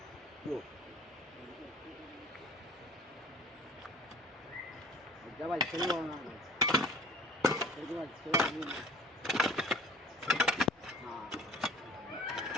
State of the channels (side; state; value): both; normal; correlation 0.45